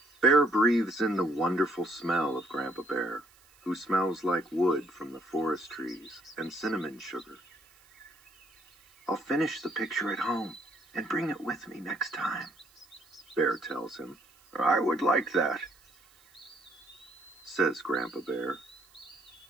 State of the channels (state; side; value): noise; right; hiss, 29 dB below the sound